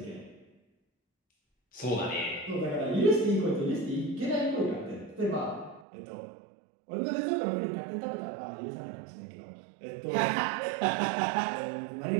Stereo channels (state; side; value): drops out; left; at 5.9 s